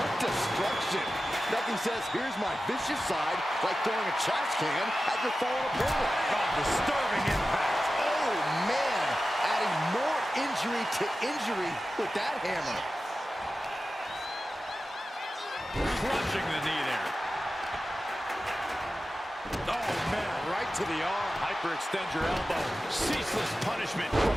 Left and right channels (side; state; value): both; normal; correlation 0.94